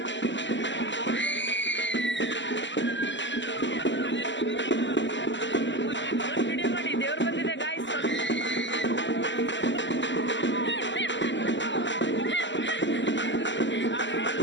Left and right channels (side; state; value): right; late; 0.54 ms